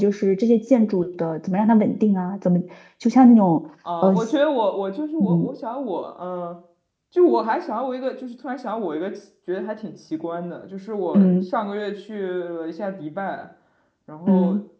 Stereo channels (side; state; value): both; identical; correlation 1.00